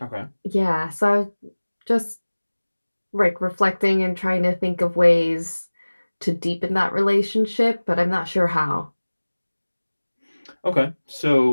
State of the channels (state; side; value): inverted; both; correlation -1.00